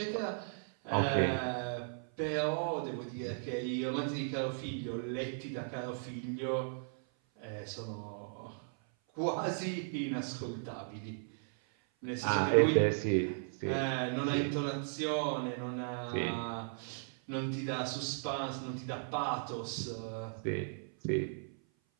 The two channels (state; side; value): silent; left; 54 dB below the other